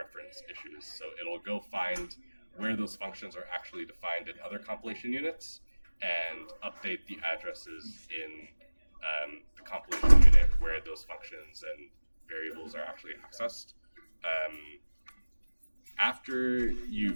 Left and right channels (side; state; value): both; inverted; correlation -1.00